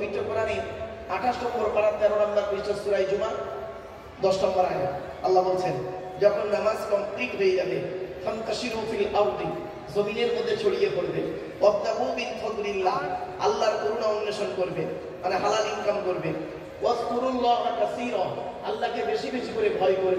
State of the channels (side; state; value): both; identical; correlation 1.00